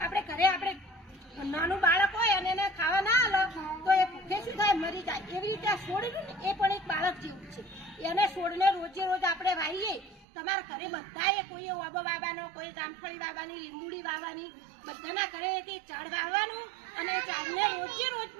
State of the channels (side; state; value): left; drops out; at 10.2 s